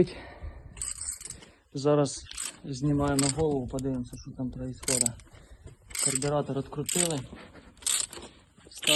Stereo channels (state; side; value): identical; both; correlation 1.00